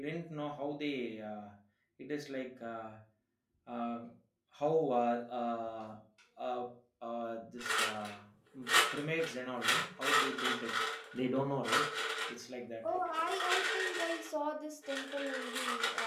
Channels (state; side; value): identical; both; correlation 1.00